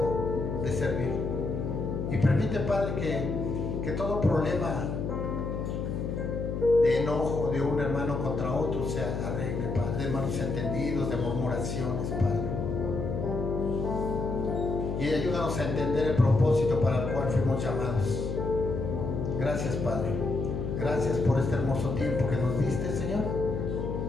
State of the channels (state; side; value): noise; left; hum, 3 dB below the sound